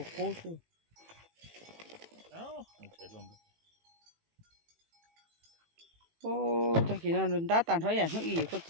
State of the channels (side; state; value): left; late; 18 ms